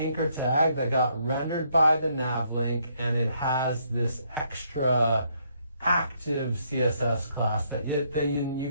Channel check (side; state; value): both; inverted; correlation -0.72